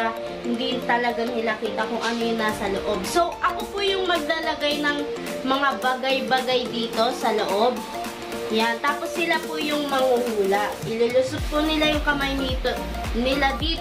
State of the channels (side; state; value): both; identical; correlation 1.00